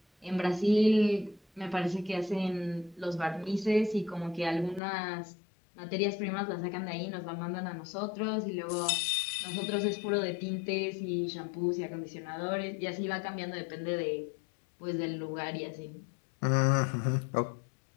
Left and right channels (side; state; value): right; drops out; at 4.8 s